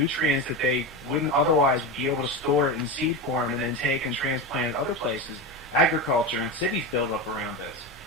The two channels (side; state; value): both; normal; correlation 0.19